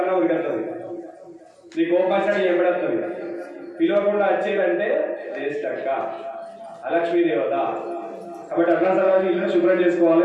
ఒకటి వస్తుంది, నీ కోపం వచ్చినట్టు ఎప్పుడొస్తుంది. పిలవకుండా వచ్చేదంటే జ్యేష్ఠక్క, అలక్ష్మీ దేవత. కాబట్టి అట్లా తర్వాత ఇల్లు శుభ్రం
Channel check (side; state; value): both; identical; correlation 1.00